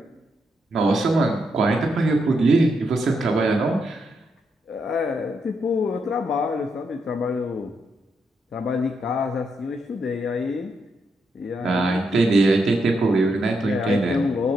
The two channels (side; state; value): both; normal; correlation 0.80